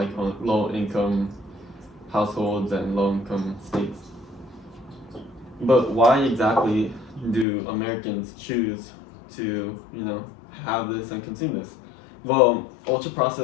low income households and low income states. But why exactly do Americans choose to have this and consume this? Well, ultra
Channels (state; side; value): drops out; right; at 7.5 s